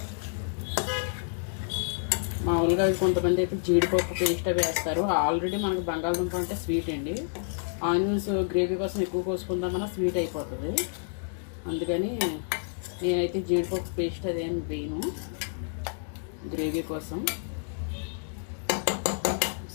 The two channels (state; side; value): silent; right; digital silence